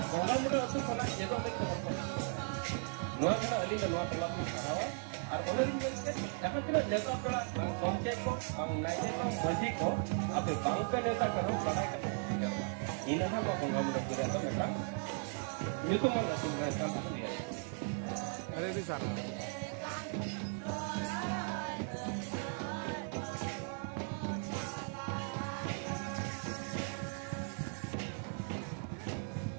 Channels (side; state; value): left; silent; 53 dB below the other